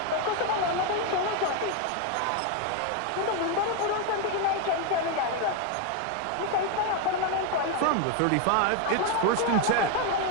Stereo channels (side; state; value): both; different; correlation 0.01